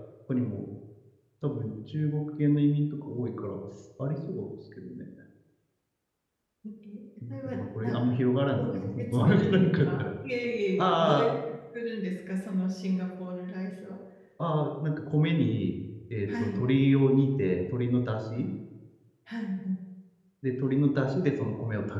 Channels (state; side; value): identical; both; correlation 1.00